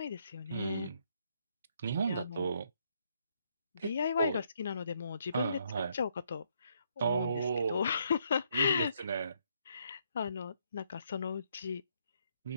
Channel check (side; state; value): both; inverted; correlation -0.73